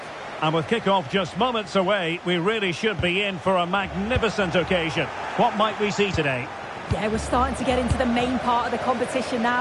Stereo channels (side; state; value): both; identical; correlation 1.00